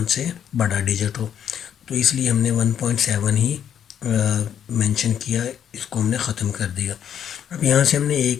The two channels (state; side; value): quieter; right; 9.1 dB